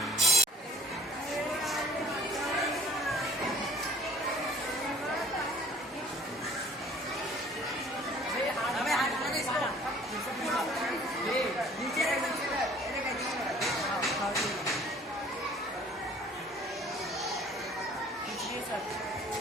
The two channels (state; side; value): normal; both; correlation 0.54